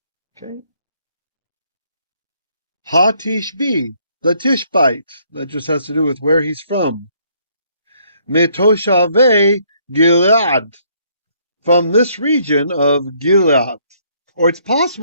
Okay. Ha-Tishbi, the Tishbite. That just has to do with where he's from. Metoshave Gilead, from this region of Gilead. Or it's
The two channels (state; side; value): inverted; both; correlation -0.67